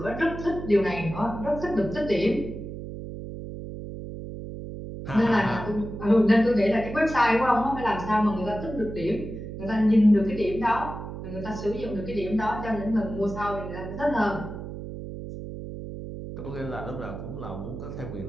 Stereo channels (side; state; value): right; noise; hum, 9 dB below the sound